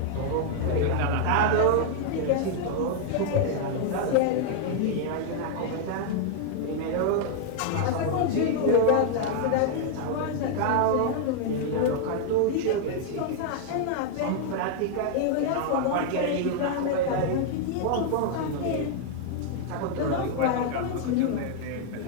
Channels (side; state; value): both; different; correlation 0.00